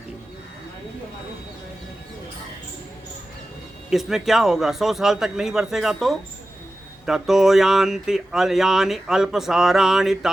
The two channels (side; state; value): both; normal; correlation 0.94